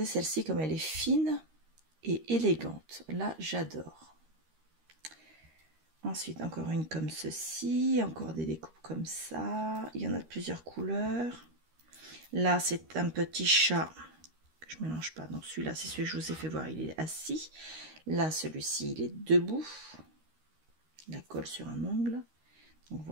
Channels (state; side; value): late; left; 13 ms